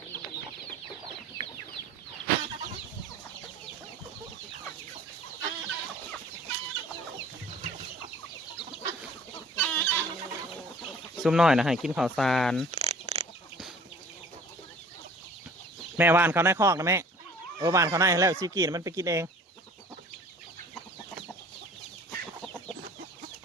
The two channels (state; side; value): normal; both; correlation 0.48